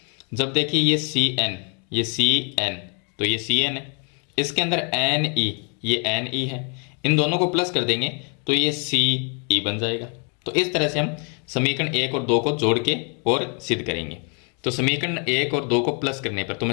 जब देखिए ये सी एन, ये सी एन, तो ये सी एन है, इसके अंदर एन ई, ये एन ई है, इन दोनों को प्लस कर देंगे तो ये सी ई बन जाएगा। तो इस तरह से हम समीकरण 1 और 2 को जोड़ के और सिद्ध करेंगे। तो समीकरण 1 और 2 को प्लस करने पर, तो मैं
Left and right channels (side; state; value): right; quieter; 38.1 dB